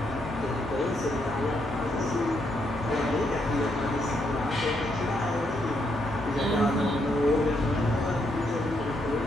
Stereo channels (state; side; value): normal; both; correlation 0.77